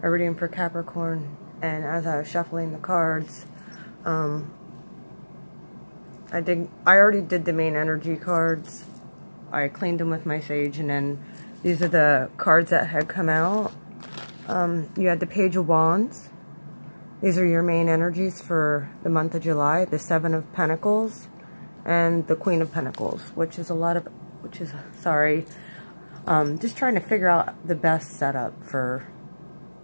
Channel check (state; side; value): inverted; both; correlation -1.00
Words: a reading for Capricorn, and as I was shuffling the cards, I already did the main energy cards. I cleaned them with my sage, and then these are the cards that had come out. You had the Page of Wands. These are your main energies for the month of July. The Seven of Pentacles and the Queen of Pentacles, just trying to figure out the best setup for